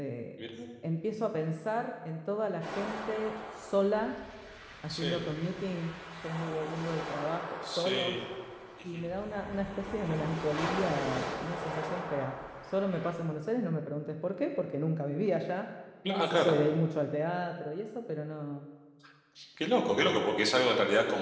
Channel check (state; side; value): identical; both; correlation 1.00